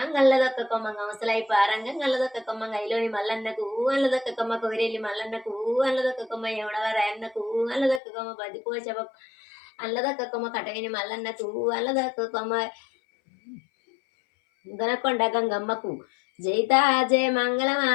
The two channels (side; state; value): right; drops out; at 8.0 s